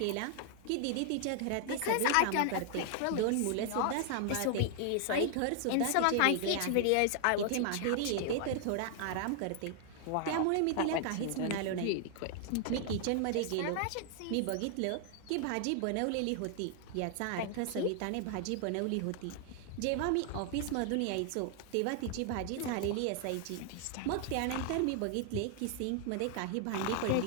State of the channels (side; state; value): both; different; correlation 0.00